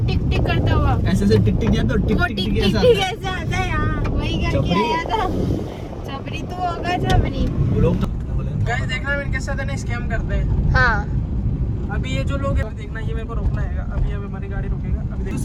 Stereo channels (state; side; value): identical; both; correlation 1.00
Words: टिक टिक करता हुआ। ऐसे से टिक टिक जाता, टिक वो टिक टिक टिक टिक ऐसा टिक ऐसे आता है। हाँ वही करके चपरी। आया था। चपरी तो होगा चपरी। वो लोग तो गाइस देखना इनके साथ है ना स्कैम करते हैं। हाँ अभी ये जो लोग हैं देखना, ये मेरे को रोकना है। अभी हमारी गाड़ी रुकेगा। अभी